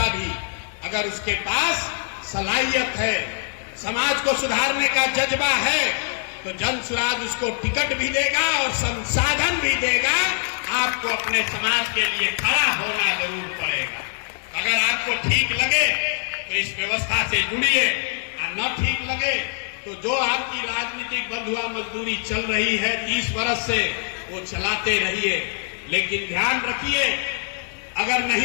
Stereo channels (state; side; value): silent; right; 63 dB below the other